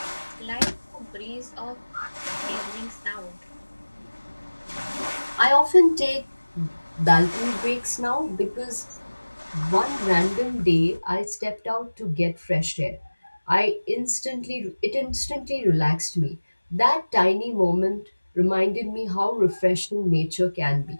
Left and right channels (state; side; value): inverted; both; correlation -1.00